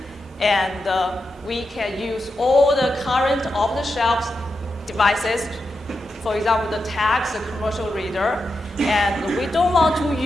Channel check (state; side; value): normal; both; correlation 0.88